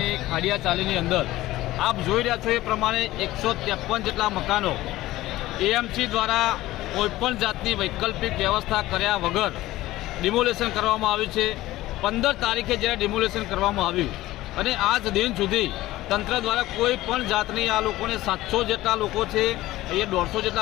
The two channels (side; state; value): right; quieter; 16.7 dB